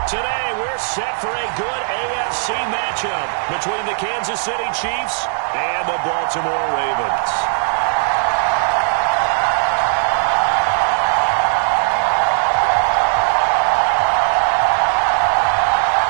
Today, we're set for a good AFC matchup between the Kansas City Chiefs and the Baltimore Ravens.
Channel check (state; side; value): silent; left; digital silence